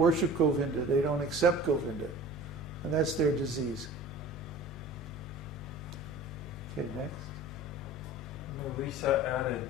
Govinda. They don't accept Govinda. And that's their disease. Okay, next. Lisa added,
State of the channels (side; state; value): both; normal; correlation 0.41